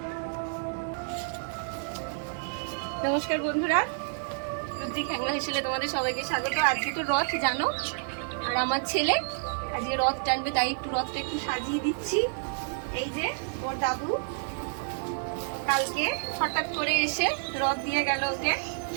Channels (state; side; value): silent; left; digital silence